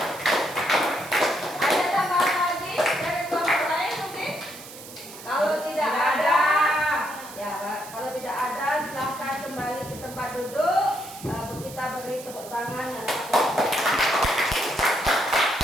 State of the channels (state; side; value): noise; right; hiss, 15 dB below the sound